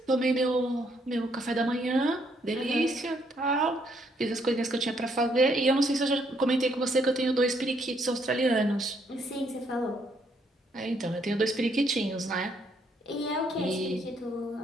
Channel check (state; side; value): normal; both; correlation 0.71